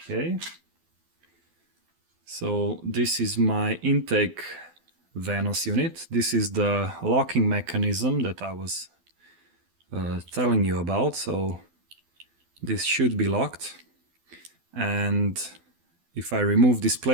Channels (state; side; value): late; left; 12 ms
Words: So this is my intake Vanos unit. This is the locking mechanism that I was telling you about. So this should be locked. And if I remove this